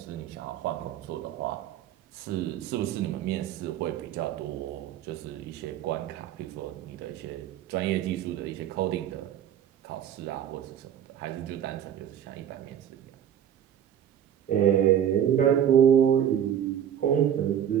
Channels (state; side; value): quieter; left; 9.8 dB